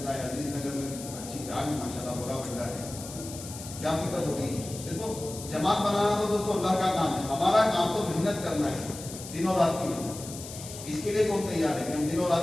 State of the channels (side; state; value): left; noise; hiss, 12 dB below the sound